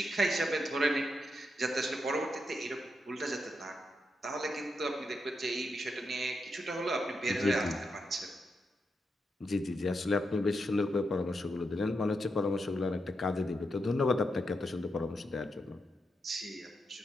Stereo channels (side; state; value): both; normal; correlation 0.84